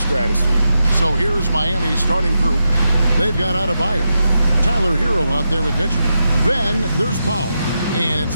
stratosphere. So here's Miami's starting group. They've got Adebayo, Tyler Hero out there with Mitchell. Then there's Powell, and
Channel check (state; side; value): inverted; both; correlation -0.87